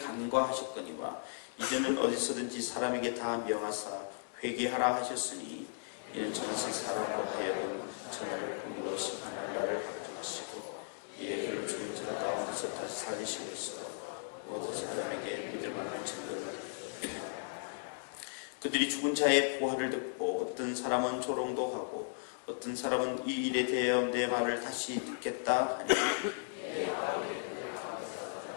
간과하셨거니와 이제는 어디서든지 사람에게 다 명하사 회개하라 하셨으니 이는 정하신 사람으로 하여금 천하를 공의로 심판할 날을 확정하시고 이에 그를 죽은 자 가운데서 다시 살리심으로써 모든 사람에게 믿을 만한 증거를 그들이 죽은 자의 부활을 듣고 어떤 사람은 조롱도 하고 어떤 사람은 이 일에 대하여 내 말을 다시 듣겠다 하니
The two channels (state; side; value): silent; right; digital silence